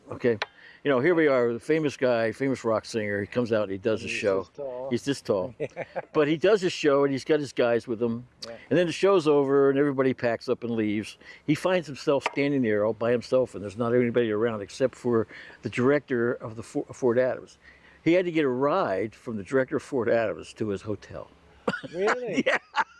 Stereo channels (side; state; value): both; identical; correlation 1.00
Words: Okay, you know, here we are, the famous guy, famous rock singer. He comes out and he does a He's show. this tall. He's this tall, but he does his show and he's got his guys with him. Yeah. And then the show's over and everybody packs up and leaves. He finds himself standing there all by himself, and there's not anybody around except for the director of the Fort Adams. He had to get a ride from the director of Fort Adams to his hotel. Really? Yeah.